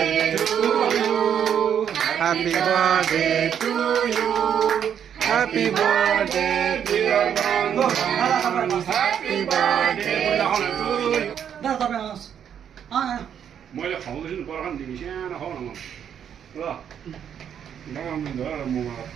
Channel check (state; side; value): quieter; left; 8.7 dB